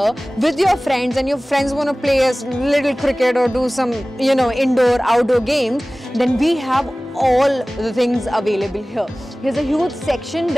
with your friends and your friends want to play a little cricket or do some, indoor, outdoor games, then we have all the things available here. There's a huge section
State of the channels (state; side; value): normal; both; correlation 0.98